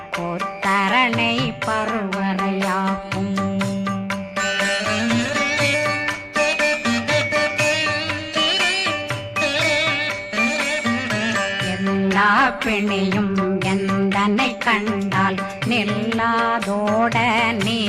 பருவரையாக்கும் எல்லா பிணியும் எந்தனை கண்டால் நில்லாதோட நீ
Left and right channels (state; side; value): identical; both; correlation 1.00